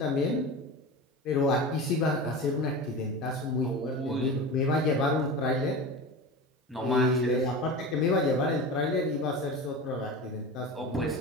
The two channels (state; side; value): normal; both; correlation 0.29